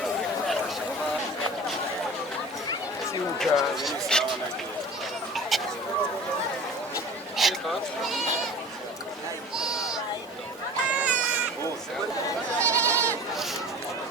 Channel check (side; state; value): both; normal; correlation 0.40